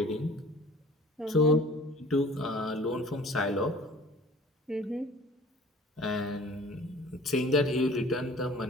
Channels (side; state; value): both; normal; correlation 0.47